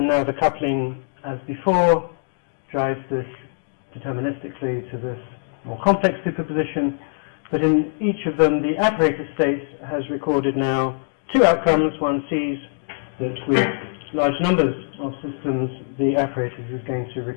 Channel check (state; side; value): silent; right; 64 dB below the other